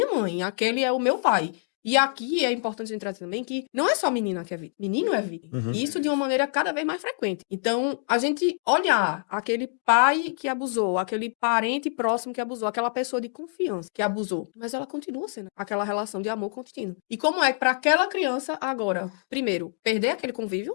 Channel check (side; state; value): right; silent; digital silence